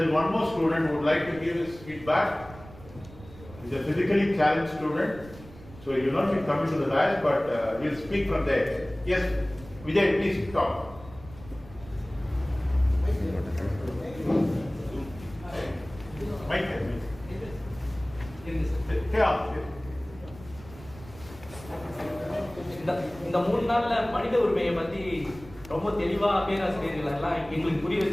is one more student who would like to give his feedback. He's a physically challenged student, so he will not be coming to the dais, but he'll speak from there. Yes, Vijay, please talk. Mike. இந்த 3 நாள்ல மனித உரிமையை பத்தி ரொம்ப தெளிவா பேராசிரியர்கள் எல்லாம் எங்களுக்கு புரிய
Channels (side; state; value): right; noise; rumble, 18 dB below the sound